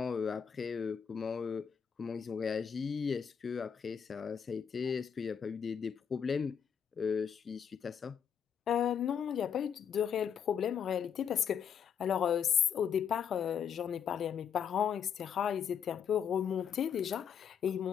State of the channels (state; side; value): quieter; right; 7.7 dB